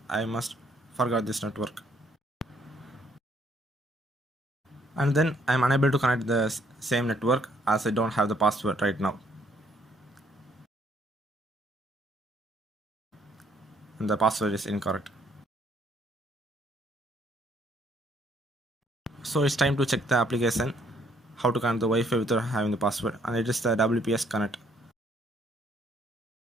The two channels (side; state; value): both; normal; correlation 0.66